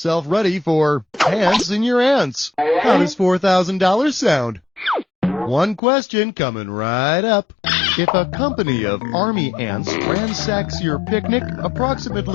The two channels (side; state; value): right; drops out; at 5.8 s